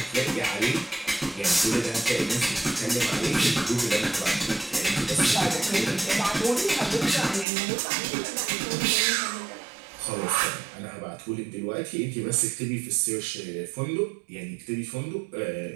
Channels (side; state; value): left; drops out; at 7.5 s